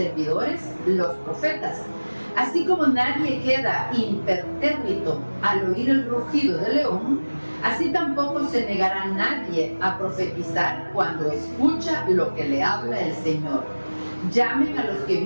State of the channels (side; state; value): both; inverted; correlation -1.00